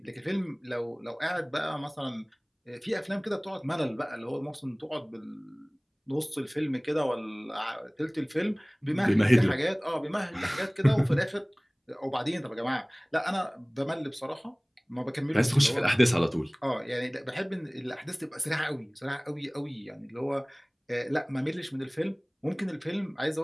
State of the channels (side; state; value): both; identical; correlation 1.00